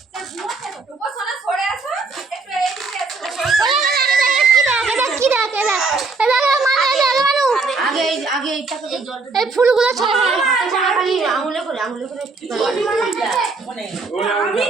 ফুলগুলো খালি আঙুলে করে আঙুলে করে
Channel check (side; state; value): left; quieter; 4.0 dB